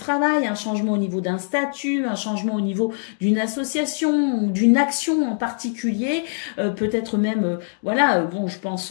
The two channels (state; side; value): silent; right; digital silence